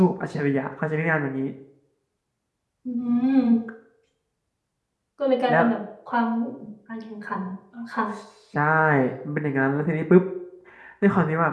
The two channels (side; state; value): both; identical; correlation 1.00